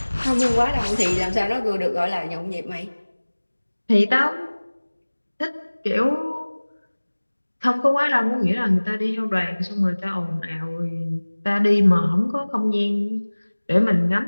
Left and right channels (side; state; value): both; inverted; correlation -1.00